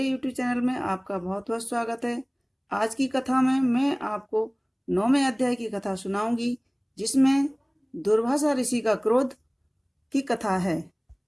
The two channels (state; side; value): identical; both; correlation 1.00